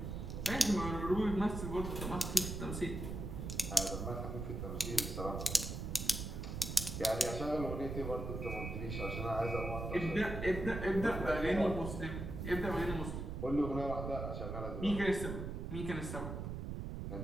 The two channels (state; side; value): noise; right; rumble, 5 dB below the sound